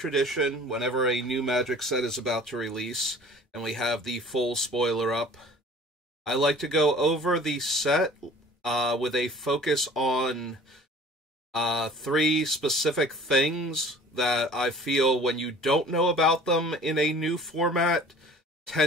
whenever a new Magic set is about to release, and we have the full spoiler up, I like to go over the set with a focus on three specific things that I feel when you don't know about them in a new format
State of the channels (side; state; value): both; normal; correlation 0.47